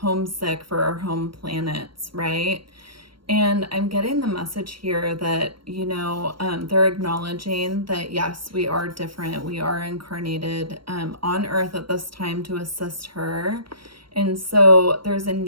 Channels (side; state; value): left; late; 0.73 ms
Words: for our home planets, right? And I'm getting the message here that, they're acknowledging that, yes, we are different. We are incarnated on Earth at this time to assist her. And so there's a